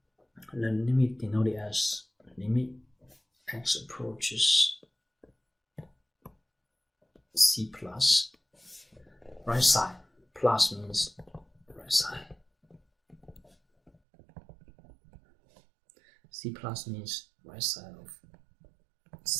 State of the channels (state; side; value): drops out; left; at 13.9 s